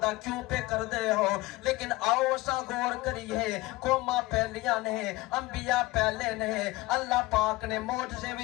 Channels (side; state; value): right; quieter; 20.0 dB